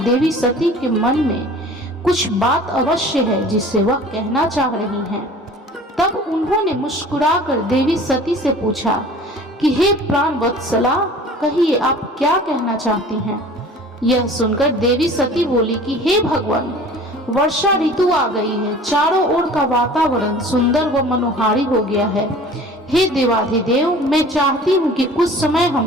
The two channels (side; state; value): both; normal; correlation 0.45